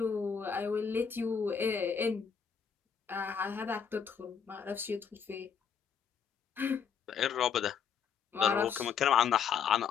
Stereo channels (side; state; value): right; quieter; 7.0 dB